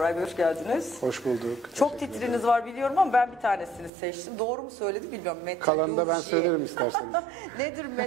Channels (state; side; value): drops out; left; at 3.9 s